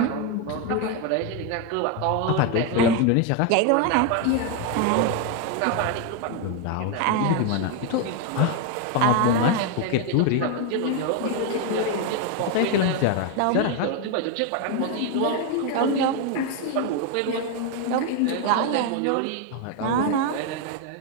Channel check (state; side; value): different; both; correlation 0.01